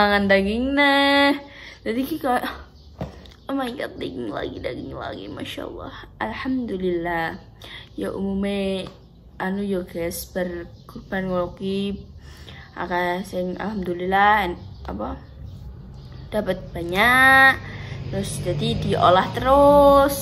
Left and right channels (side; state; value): both; identical; correlation 1.00